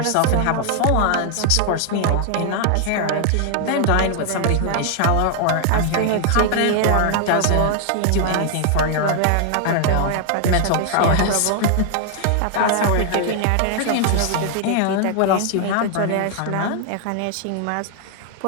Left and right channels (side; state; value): both; different; correlation 0.00